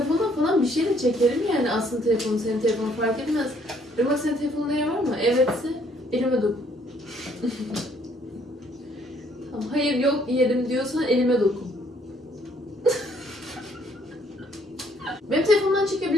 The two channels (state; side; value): normal; both; correlation 0.65